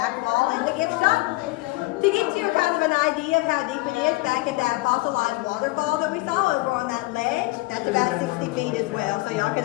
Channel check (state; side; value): quieter; right; 21.9 dB